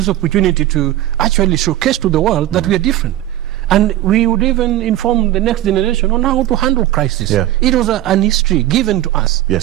opportunity to actually showcase to the world that we are different. And we would even inform the next generation on how to handle crisis. It was an history given to us.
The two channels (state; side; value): quieter; left; 14.0 dB